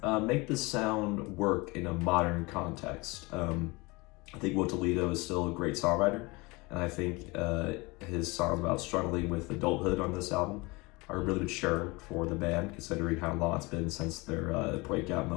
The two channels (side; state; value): right; quieter; 24.8 dB